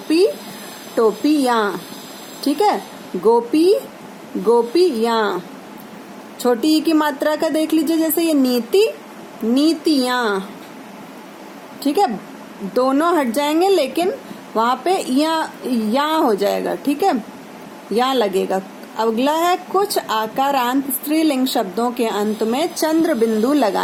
टोपी या। ठीक है, गोपी, गोपी या। छोटी ई की मात्रा का देख लीजिए, जैसे ये नीति, नीतियां। ठीक है, दोनों हट जाएंगे, लेकिन वहां पे या हो जाएगा। ठीक है, या लगेगा। अगला है कुछ आकारांत स्त्रीलिंग शब्दों के अंत में चंद्र बिंदु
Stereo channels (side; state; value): both; identical; correlation 1.00